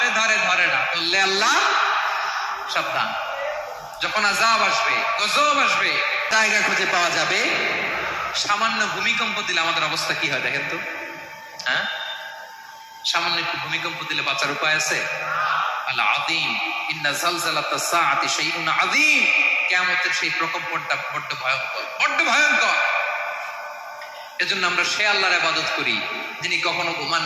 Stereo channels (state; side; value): identical; both; correlation 1.00